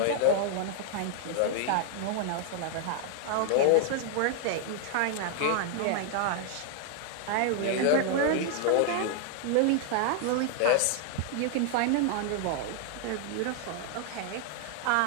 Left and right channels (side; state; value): both; different; correlation 0.00